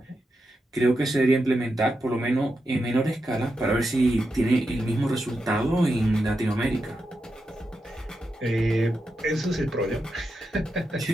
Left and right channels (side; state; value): both; normal; correlation 0.87